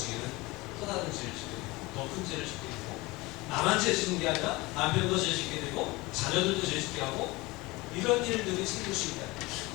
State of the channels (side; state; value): right; quieter; 22.3 dB